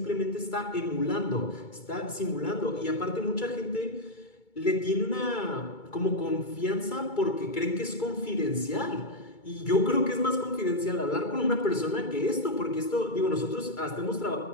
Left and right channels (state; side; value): late; right; 2.3 ms